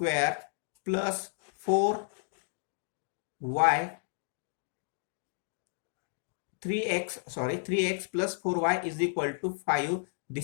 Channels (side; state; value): right; silent; digital silence